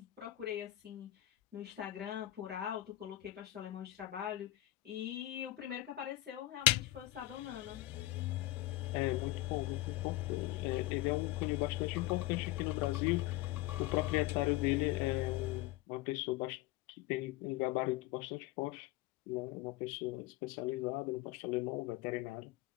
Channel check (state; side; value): quieter; right; 16.7 dB